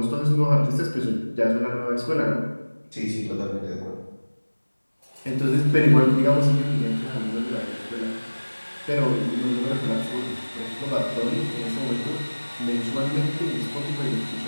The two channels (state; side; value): inverted; both; correlation -1.00